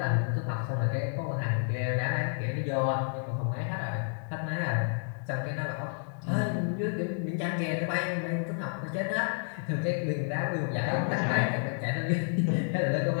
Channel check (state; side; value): silent; right; digital silence